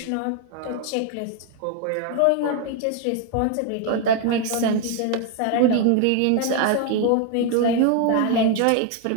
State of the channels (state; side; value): different; both; correlation 0.01